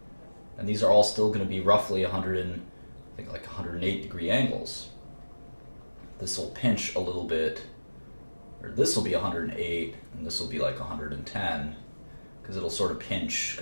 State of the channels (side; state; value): both; inverted; correlation -1.00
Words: And these are all still going to be roughly 108 degree angles. This will pinch a little bit, or this will be 108, and this will be like 110, because it'll sort of pinch,